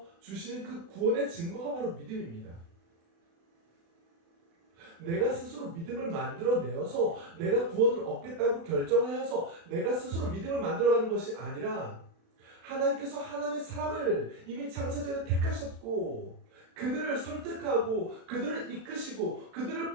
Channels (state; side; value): late; left; 36 ms